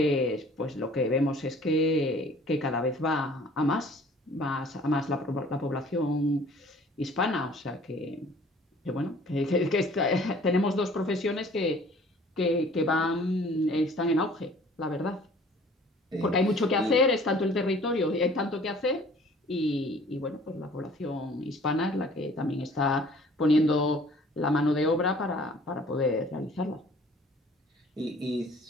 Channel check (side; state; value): both; normal; correlation 0.52